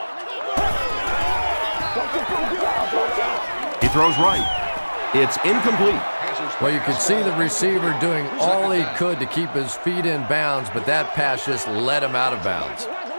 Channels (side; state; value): both; inverted; correlation -1.00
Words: He throws right. It's incomplete. Well, you could see the receiver doing all he could to keep his feet in bounds, but that pass just let him out of bounds.